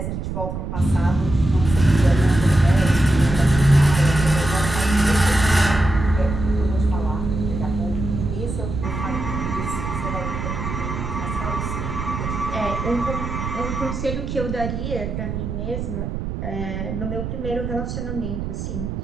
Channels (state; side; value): noise; right; rumble, 5 dB below the sound